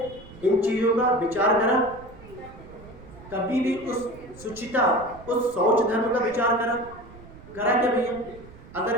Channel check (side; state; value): right; noise; rumble, 19 dB below the sound